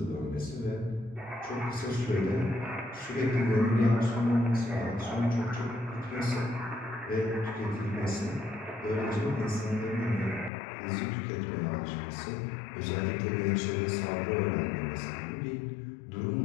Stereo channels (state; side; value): drops out; right; at 10.5 s